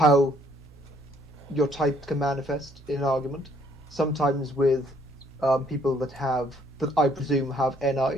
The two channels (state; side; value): normal; both; correlation 0.65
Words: your type can manifest in an argument. Sometimes with people that I presume have